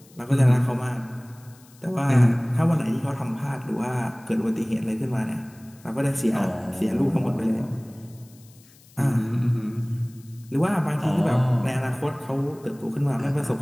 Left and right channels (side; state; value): left; noise; hiss, 27 dB below the sound